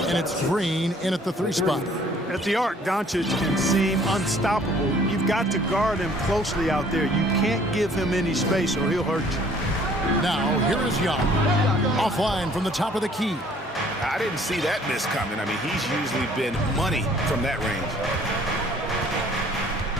and it's Green in at the 3 spot. At the arc, Doncic can seem unstoppable. You've got to guard him closely out there. You can't give him any space or he'll hurt you. Now, here is Young. Offline from the top of the key. I didn't see that miss coming. I mean, he's usually been money from that range.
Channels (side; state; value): both; normal; correlation 0.57